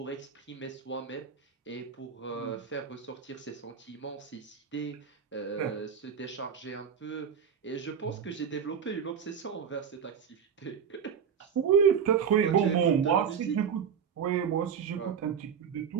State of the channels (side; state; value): left; quieter; 7.3 dB